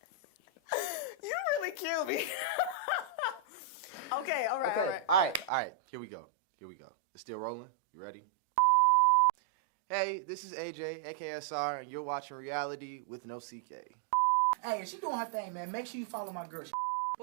really killed me. Okay, all right. Here we go. It's still rolling. You ready? Hey, this is AJ, aka Ausar, and you're watching Reality with Nosike. Hey, she doing her thing, man. Make sure you follow my girl.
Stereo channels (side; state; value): left; drops out; at 5.5 s